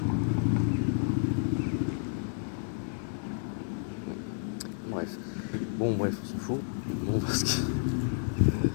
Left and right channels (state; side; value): silent; right; digital silence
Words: Bref. Bon, bref, on s'en fout. Bon, parce que